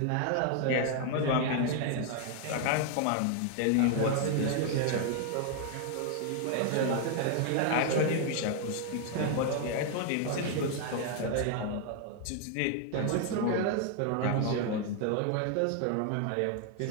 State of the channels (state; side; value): different; both; correlation 0.00